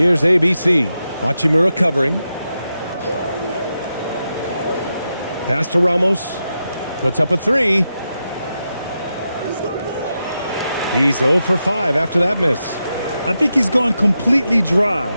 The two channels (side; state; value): both; inverted; correlation -0.88